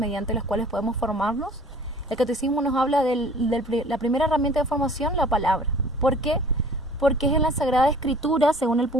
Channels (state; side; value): normal; both; correlation 0.49